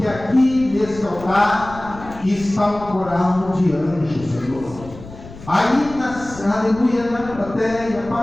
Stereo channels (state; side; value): noise; left; rumble, 16 dB below the sound